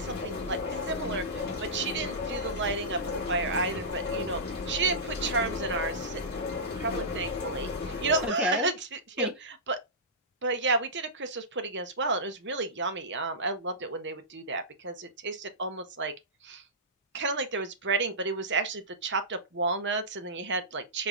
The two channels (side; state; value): both; normal; correlation -0.18